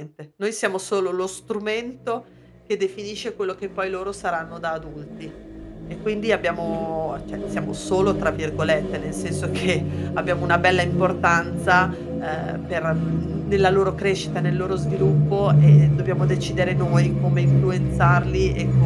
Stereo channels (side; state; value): both; identical; correlation 1.00